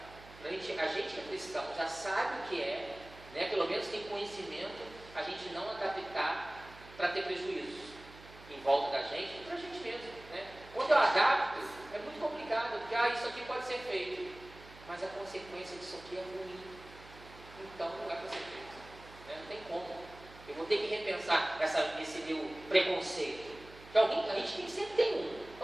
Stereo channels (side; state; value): right; noise; hum, 19 dB below the sound